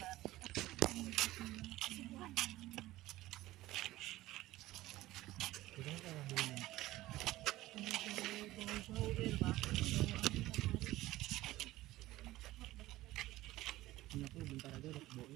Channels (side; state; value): left; quieter; 16.8 dB